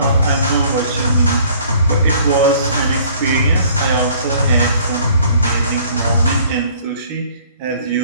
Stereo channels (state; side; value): inverted; both; correlation -0.56